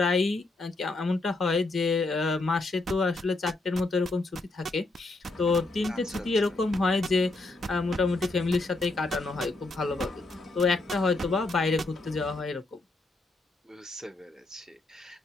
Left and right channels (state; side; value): quieter; right; 3.2 dB